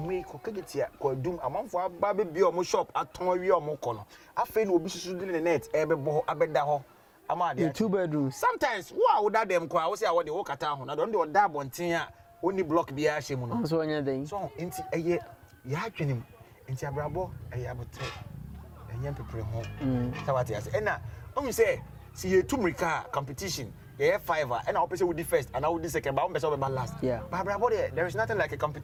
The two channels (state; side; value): identical; both; correlation 1.00